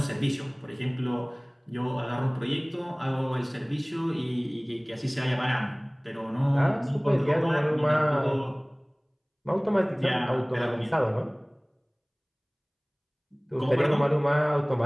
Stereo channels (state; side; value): identical; both; correlation 1.00